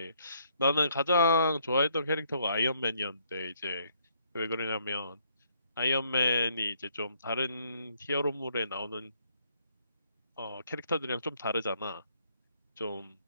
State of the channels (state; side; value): inverted; both; correlation -0.69